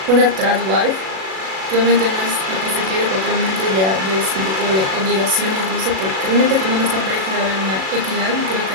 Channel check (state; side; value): late; left; 37 ms